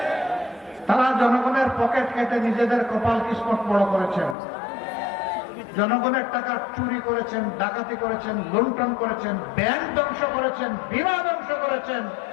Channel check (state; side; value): drops out; right; at 4.4 s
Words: তারা জনগণের পকেট কেটে নিজেদের কপাল কিসমত বড় করেছেন, জনগণের টাকা চুরি করেছেন, ডাকাতি করেছেন, লুণ্ঠন করেছেন, ব্যাংক ধ্বংস করেছেন, বীমা ধ্বংস করেছেন,